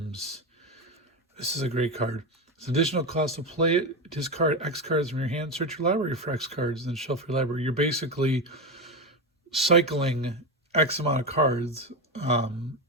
This is a great card. It's an additional cost to play it. Discard X cards from your hand. Search your library for X cards, then shelf your library. You're basically cycling X amount of cards.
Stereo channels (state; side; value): normal; both; correlation 0.16